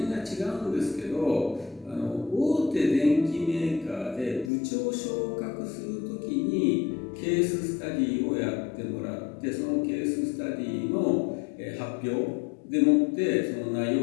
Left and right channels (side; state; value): right; drops out; at 4.5 s